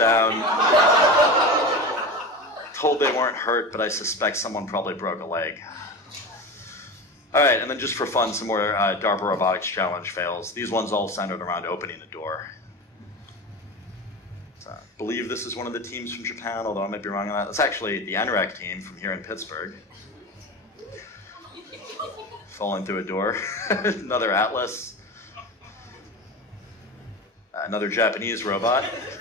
Told they weren't hurt, but I suspect someone probably broke a leg. All right, and then just for fun, some more DARPA Robotics Challenge fails. These ones all centered around opening a door. So I believe this is one of the teams from Japan, although I might be wrong on that. That's actually the NREC team from here in Pittsburgh. Falling through a door. Another Atlas. Another Japanese robot.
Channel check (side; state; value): both; normal; correlation 0.27